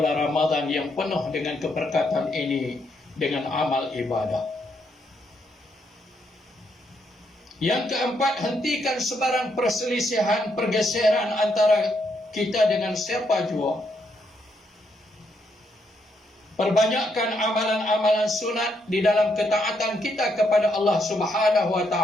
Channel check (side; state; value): both; normal; correlation 0.77